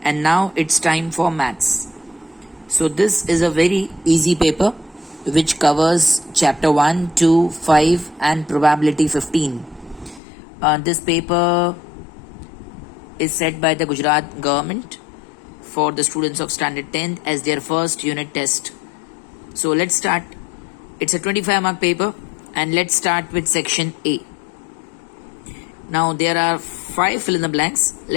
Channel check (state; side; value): drops out; right; at 10.2 s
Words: and now it's time for maths. So this is a very easy paper which covers chapter 1, 2, 5 and probability 15. This paper is set by the Gujarat government for the students of standard 10th as their first unit test. So let's start. It's a 25 mark paper and let's start with section A. Now there are 5 fill in the blanks.